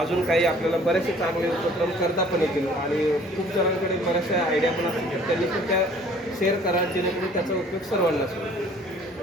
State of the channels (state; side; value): normal; both; correlation 0.54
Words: काही आपल्याला बरेचसे चांगले उपक्रम करता पण येतील आणि खूप जणांकडे बऱ्याचशा आयडिया पण असतील, त्यांनी पण त्या शेअर करा जेणेकरून त्याचा उपयोग सर्वांनाच होईल.